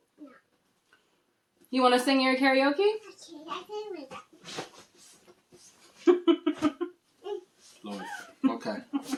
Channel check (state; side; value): identical; both; correlation 1.00